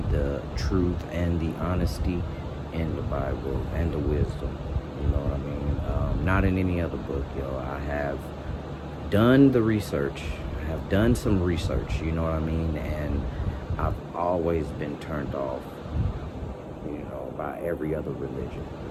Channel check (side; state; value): both; identical; correlation 1.00